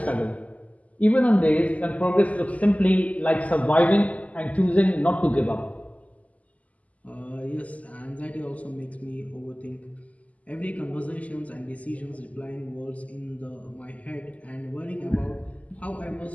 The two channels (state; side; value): late; right; 0.071 ms